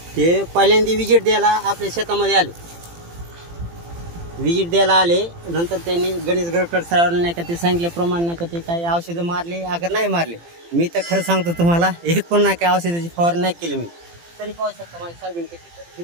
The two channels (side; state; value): left; late; 18 ms